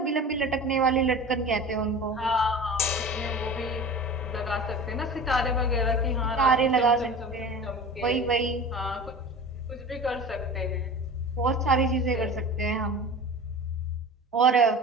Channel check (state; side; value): normal; both; correlation 0.35